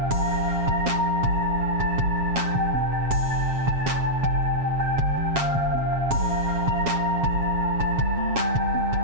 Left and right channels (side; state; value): left; late; 7.3 ms